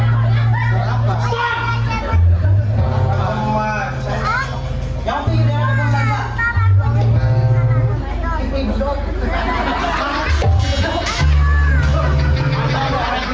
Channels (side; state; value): both; identical; correlation 1.00